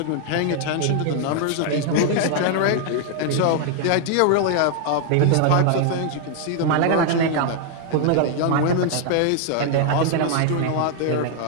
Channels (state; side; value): different; both; correlation 0.00